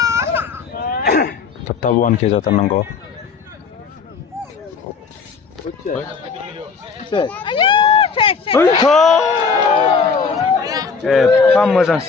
थाब थाब 1K जाथारनांगौ एफा मोजां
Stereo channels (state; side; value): quieter; right; 5.3 dB